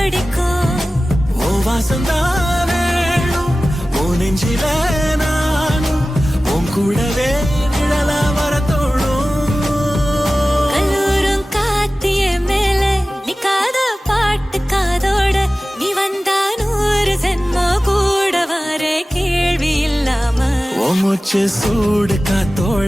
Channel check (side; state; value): both; normal; correlation 0.96